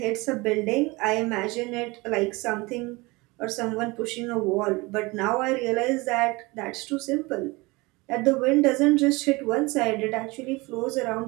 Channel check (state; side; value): quieter; left; 24.0 dB